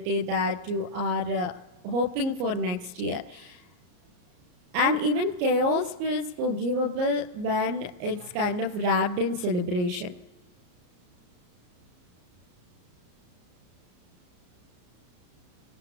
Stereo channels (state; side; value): late; left; 34 ms